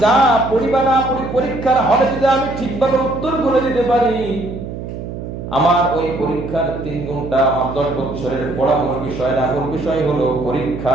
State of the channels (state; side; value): noise; right; hum, 8 dB below the sound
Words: যা পড়িবা না পড়ি, পরীক্ষার হলে যদি আমি ঠিকভাবে উত্তর করে দিতে পারি, আমার ওই পরীক্ষার 3 ঘন্টা আমার 10 বছরের পড়া মূল বিষয় না। মূল বিষয় হলো